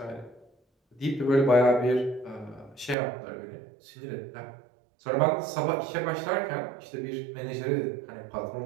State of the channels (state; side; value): drops out; left; at 3.0 s